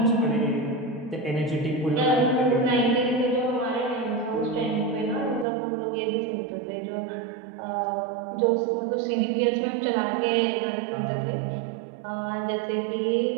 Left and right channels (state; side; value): drops out; left; at 5.5 s